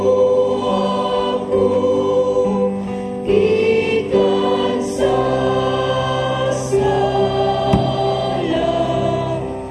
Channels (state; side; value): identical; both; correlation 1.00